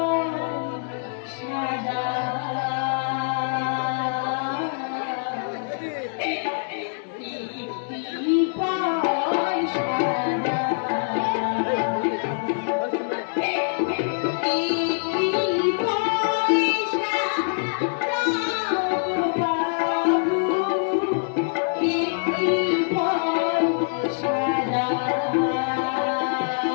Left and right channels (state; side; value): silent; right; digital silence